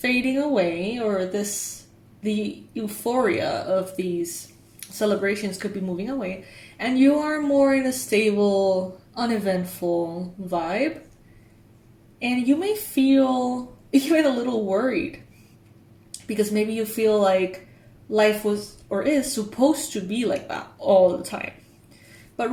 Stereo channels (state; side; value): identical; both; correlation 1.00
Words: away, or the euphoria of these celebrations could be moving away, and you are more in a stable, uneventful vibe. And you may feel even a little worried because maybe you feel like life was or is supposed to be like that all the time. But